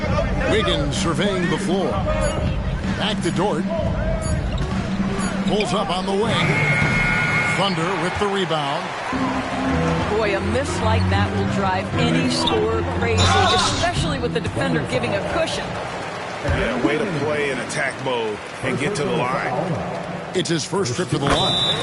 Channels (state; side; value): identical; both; correlation 1.00